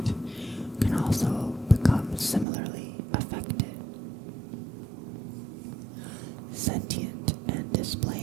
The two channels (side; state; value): left; drops out; at 2.5 s